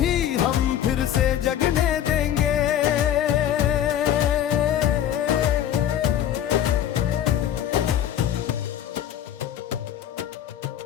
हम फिर से जगने देंगे।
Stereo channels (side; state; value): right; quieter; 10.6 dB